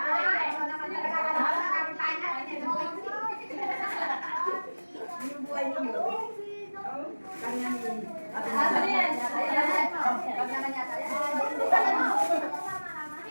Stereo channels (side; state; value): both; inverted; correlation -1.00